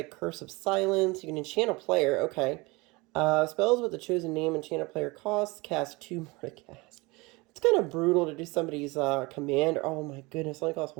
Curse of Silence. You can enchant a player. Okay. Spells with the chosen name enchant a player costs. Cast 2 more to cast. It's kind of brutal to do somebody's commander. Oh my goodness, it only costs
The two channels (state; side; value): quieter; left; 24.4 dB